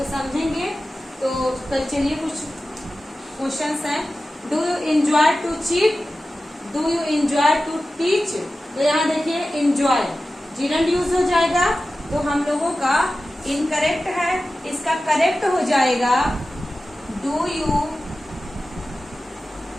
समझेंगे। तो कल चलिए कुछ क्वेश्चंस हैं। Do you enjoy to cheat? Do you enjoy to teach? तो यहाँ देखिए इंजॉय जिरंड यूज हो जाएगा, तो हम लोगों का इनकरेक्ट है, इसका करेक्ट हो जाएगा do you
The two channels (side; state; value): both; normal; correlation 0.94